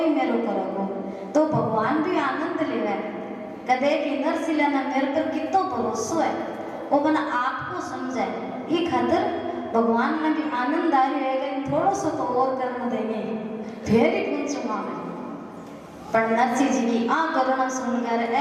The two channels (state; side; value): identical; both; correlation 1.00